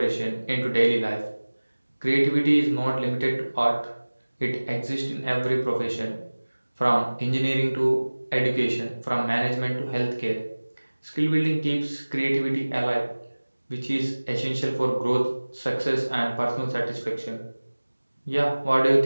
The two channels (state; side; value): inverted; both; correlation -1.00